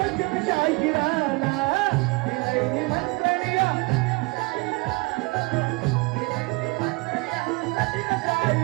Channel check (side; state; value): left; quieter; 26.5 dB